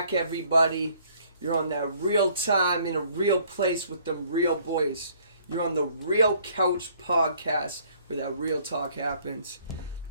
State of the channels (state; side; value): inverted; both; correlation -0.61